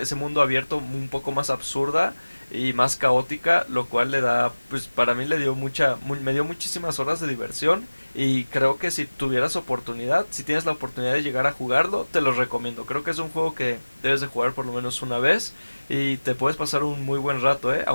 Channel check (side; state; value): both; inverted; correlation -1.00